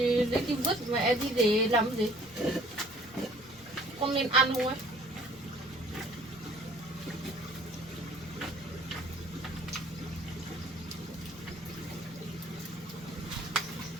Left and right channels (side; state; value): both; normal; correlation 0.54